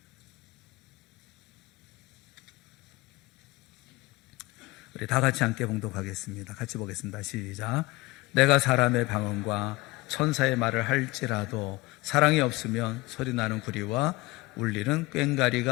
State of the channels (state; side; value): quieter; right; 21.4 dB